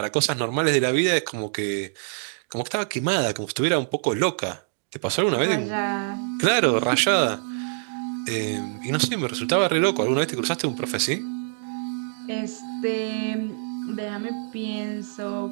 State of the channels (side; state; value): left; silent; digital silence